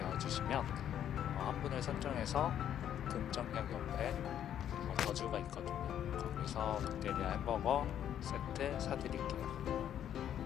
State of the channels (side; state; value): right; quieter; 10.2 dB